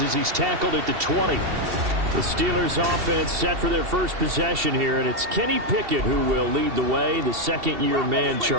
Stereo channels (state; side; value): late; left; 2.7 ms